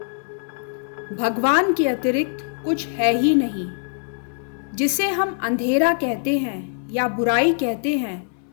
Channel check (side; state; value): right; silent; 61 dB below the other